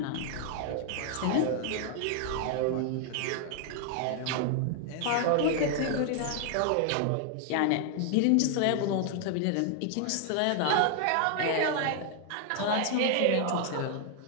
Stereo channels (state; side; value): different; both; correlation 0.00